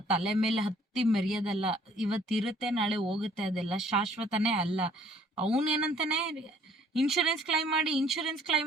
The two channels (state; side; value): normal; both; correlation 0.58